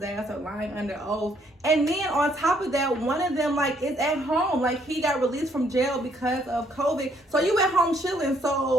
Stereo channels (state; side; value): normal; both; correlation 0.68